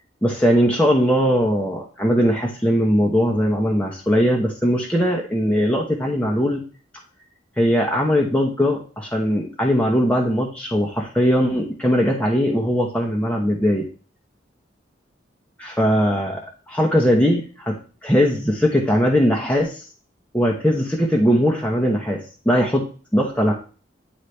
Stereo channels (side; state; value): both; normal; correlation 0.81